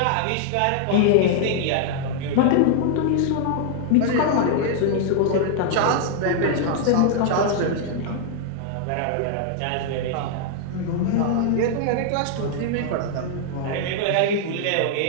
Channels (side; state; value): both; different; correlation -0.01